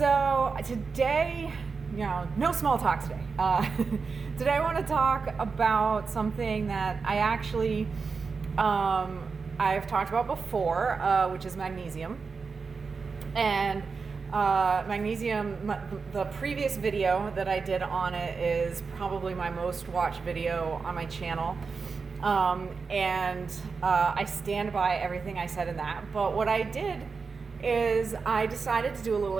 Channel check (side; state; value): left; quieter; 4.9 dB